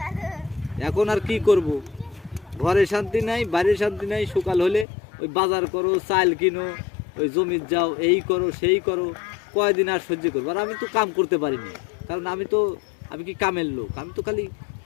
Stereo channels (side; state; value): right; drops out; at 4.9 s